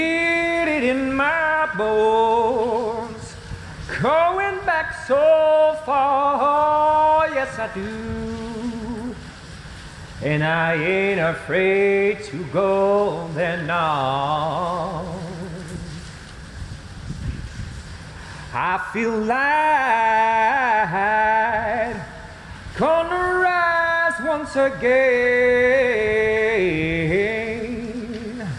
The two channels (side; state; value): both; identical; correlation 1.00